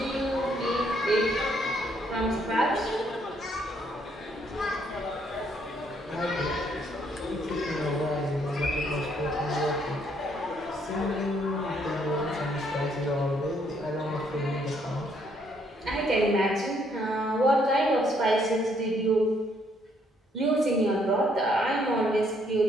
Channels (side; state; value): both; normal; correlation 0.69